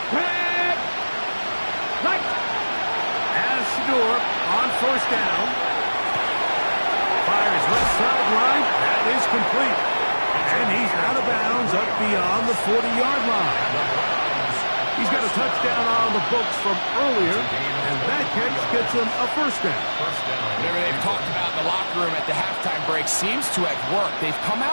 On first down. Fires left sideline. That is complete. And he's out of bounds up beyond the 40-yard line. He's got a touchdown on the books from earlier, and that catch gets him a first down. Whatever they've talked about in the locker room at the halftime break seems to have worked. They've come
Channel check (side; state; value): both; inverted; correlation -1.00